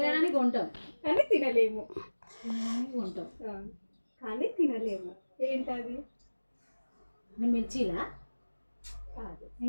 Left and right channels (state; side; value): inverted; both; correlation -1.00